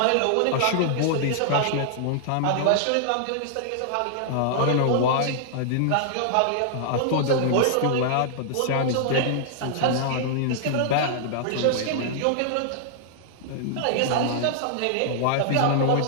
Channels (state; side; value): different; both; correlation -0.01